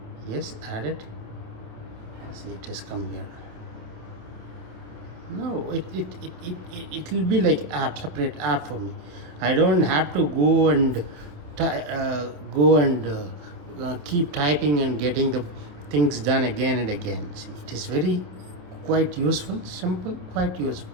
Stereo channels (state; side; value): late; left; 28 ms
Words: Yes, add it. See, it has come here. No, it will be like app, separate app for me. I don't have to go and keep typing and getting the things done again and again. See, it is very quite useful, simple, quite useful.